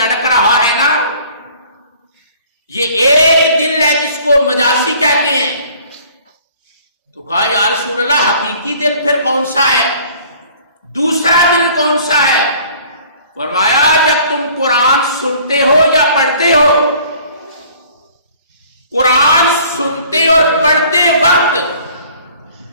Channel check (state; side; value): inverted; both; correlation -0.53